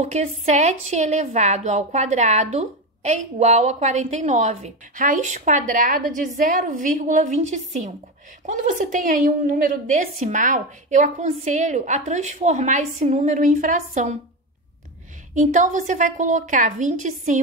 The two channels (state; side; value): normal; both; correlation 0.17